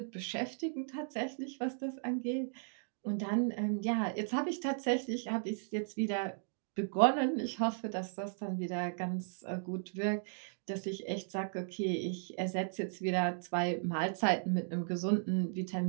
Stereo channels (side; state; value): left; silent; digital silence